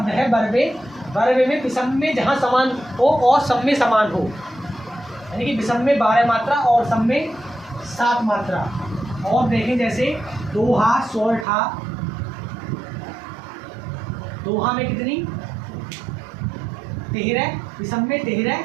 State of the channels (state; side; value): drops out; left; at 11.5 s